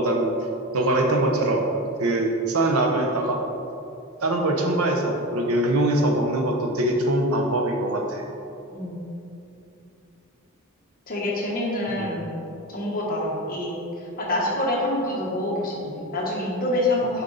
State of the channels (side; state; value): both; normal; correlation 0.25